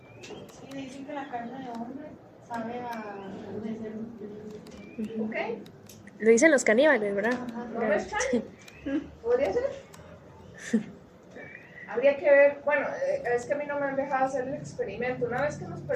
Sí, dicen que la carne de hombre sabe a carne de cerdo. ¿Ok? Lo dicen los caníbales, ¿verdad? ¿No me extraña? ¿Podría ser? Habría que ver, bueno, es que a mí no me han dejado hacer el experimento. Una vez que nos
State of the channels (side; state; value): both; identical; correlation 1.00